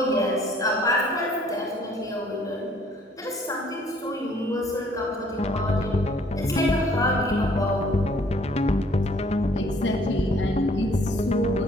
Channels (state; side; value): normal; both; correlation 0.60